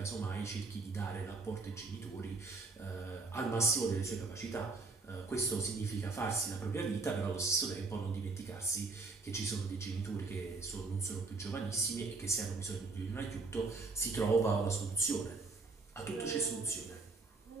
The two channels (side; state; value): left; quieter; 3.9 dB